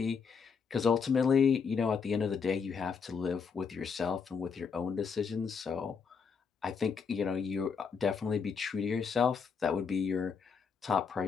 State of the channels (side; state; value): right; quieter; 5.8 dB